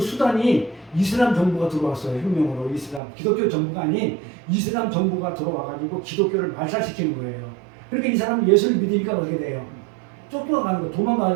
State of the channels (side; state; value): left; drops out; at 3.0 s